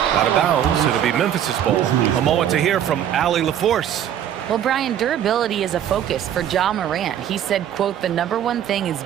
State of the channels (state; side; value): quieter; left; 10.2 dB